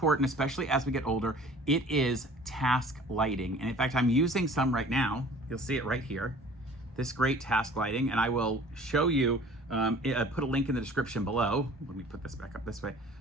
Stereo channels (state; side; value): normal; both; correlation 0.48